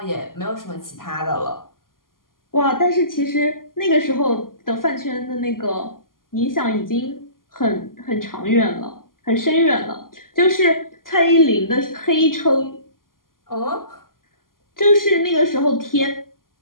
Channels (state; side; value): late; right; 0.91 ms